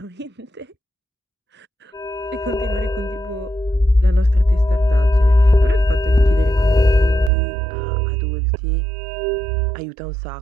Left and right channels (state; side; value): drops out; left; at 7.3 s